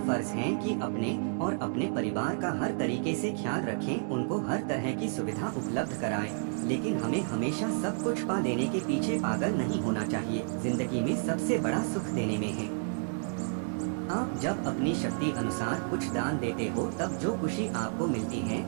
है कि अपने और अपने परिवार का हर तरीके से ख्याल रखें, उनको हर तरह की सुविधा उपलब्ध कराएं। लेकिन हमें हमेशा सब कुछ पा लेने के पीछे पागल नहीं होना चाहिए। जिंदगी में सबसे बड़ा सुख देने में है। आप जब अपनी शक्ति अनुसार कुछ दान देते हो तब जो खुशी आपको मिलती है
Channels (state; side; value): silent; left; 57 dB below the other